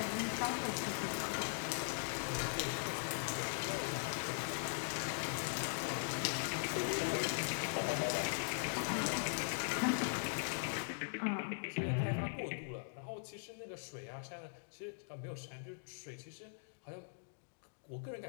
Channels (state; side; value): silent; right; digital silence